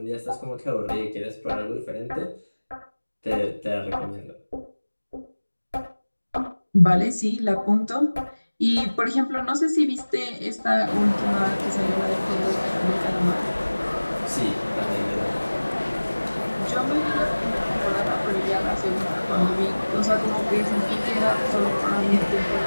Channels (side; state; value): both; inverted; correlation -1.00